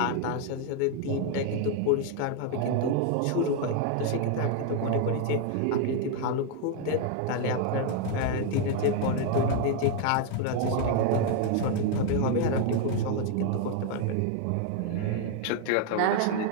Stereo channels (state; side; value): different; both; correlation 0.01